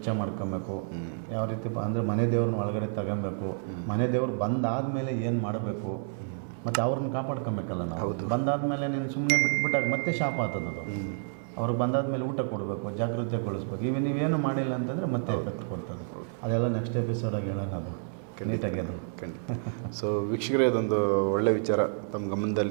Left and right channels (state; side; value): silent; left; 58 dB below the other